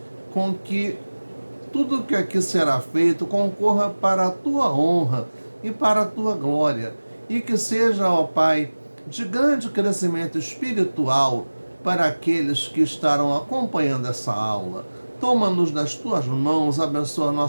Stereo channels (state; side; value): inverted; both; correlation -1.00